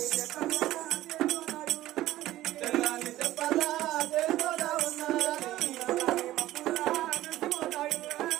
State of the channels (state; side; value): quieter; left; 15.1 dB